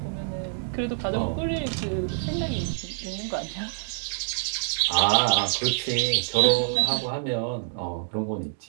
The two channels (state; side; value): silent; left; digital silence